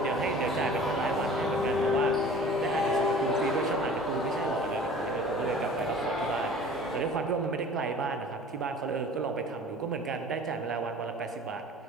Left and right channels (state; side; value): normal; both; correlation 0.45